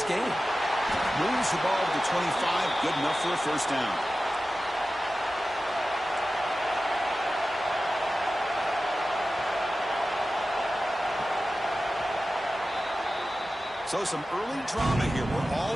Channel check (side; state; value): both; normal; correlation 0.94